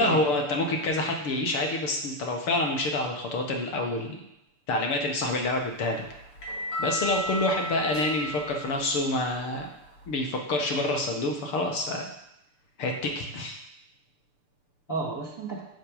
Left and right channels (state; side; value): late; right; 6.8 ms